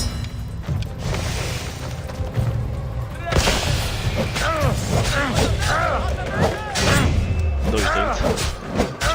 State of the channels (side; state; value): both; identical; correlation 1.00